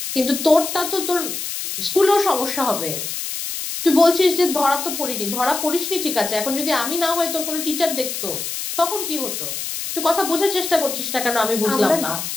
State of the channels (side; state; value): left; noise; hiss, 5 dB below the sound